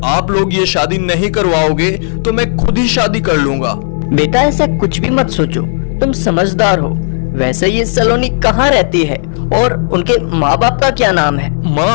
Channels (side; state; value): right; silent; digital silence